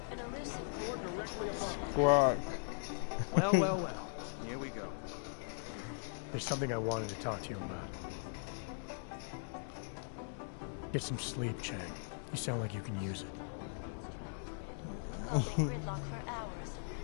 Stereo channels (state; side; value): silent; right; digital silence